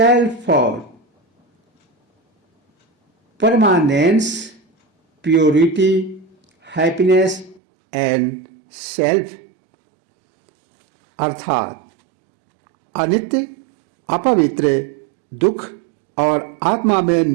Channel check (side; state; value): left; drops out; at 7.6 s